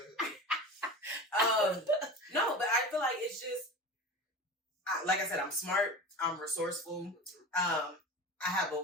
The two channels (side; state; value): both; normal; correlation 0.32